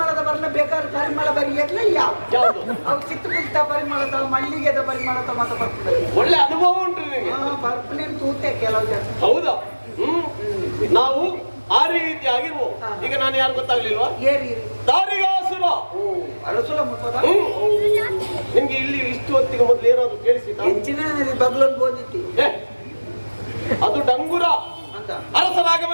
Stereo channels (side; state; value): both; inverted; correlation -1.00